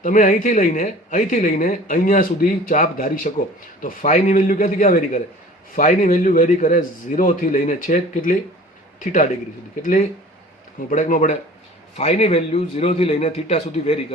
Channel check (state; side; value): normal; both; correlation 0.45